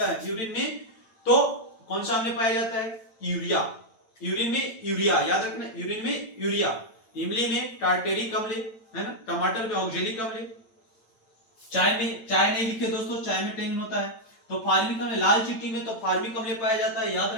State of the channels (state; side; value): late; right; 9.0 ms